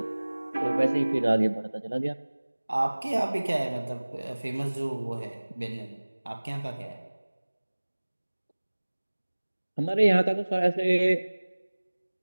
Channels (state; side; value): inverted; both; correlation -1.00